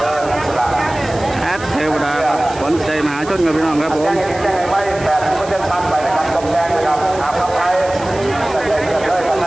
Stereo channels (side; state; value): right; noise; hiss, 17 dB below the sound